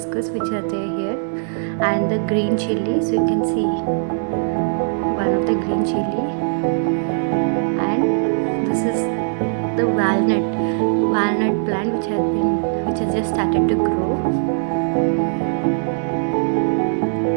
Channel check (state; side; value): silent; left; digital silence